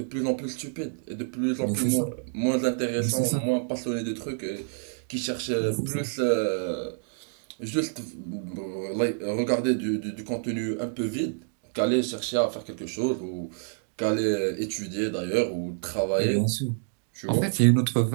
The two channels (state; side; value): silent; left; digital silence